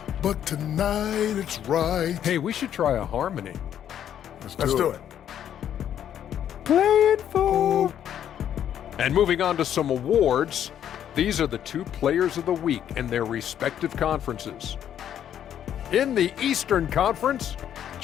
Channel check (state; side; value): quieter; right; 10.0 dB